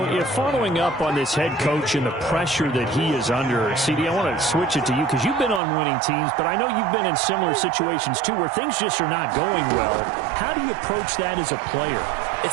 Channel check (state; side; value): drops out; left; at 5.6 s